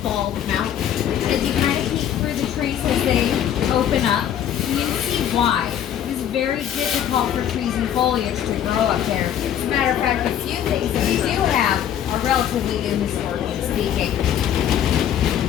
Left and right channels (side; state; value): right; quieter; 10.1 dB